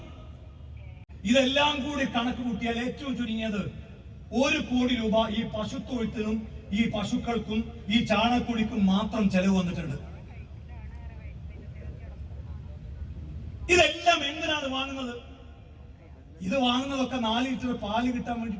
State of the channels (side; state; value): both; identical; correlation 1.00